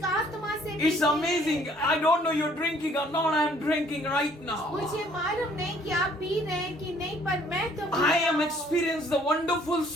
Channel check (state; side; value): normal; both; correlation 0.60